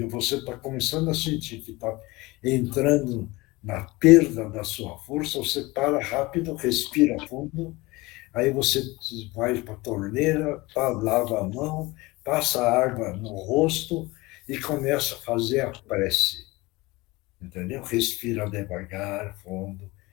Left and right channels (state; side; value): quieter; right; 22.0 dB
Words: você está começando a sentir que está entrando na perda da sua força, você para rápido, respira fundo, aí você vai para a torneira, lava a mão, passa água no rosto e começa a fazer a prece. Entendeu? Respira devagar, fundo,